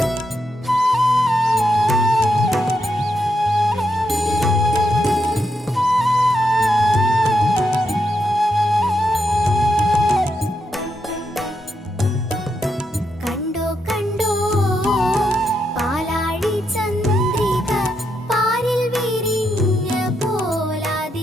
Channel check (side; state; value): both; normal; correlation 0.82